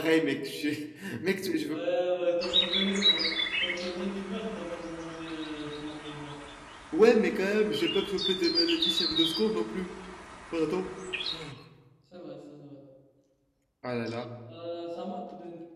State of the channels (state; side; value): identical; both; correlation 1.00